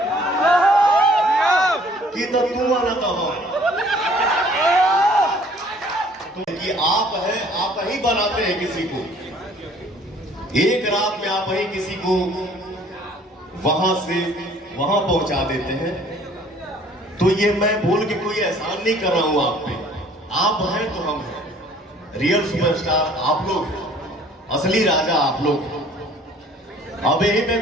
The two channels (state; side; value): normal; both; correlation 0.55